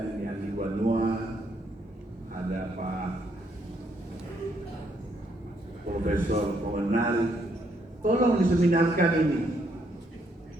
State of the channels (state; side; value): normal; both; correlation 0.72